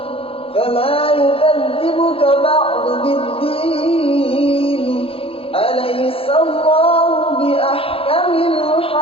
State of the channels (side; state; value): right; late; 0.27 ms